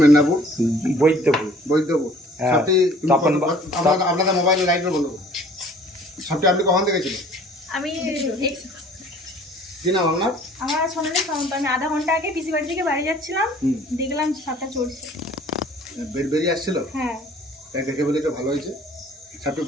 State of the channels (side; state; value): both; normal; correlation 0.52